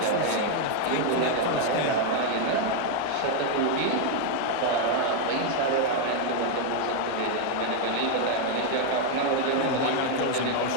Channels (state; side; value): different; both; correlation 0.00